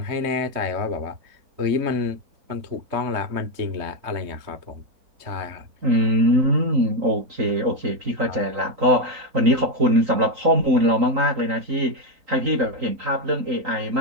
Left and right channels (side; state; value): left; late; 3.9 ms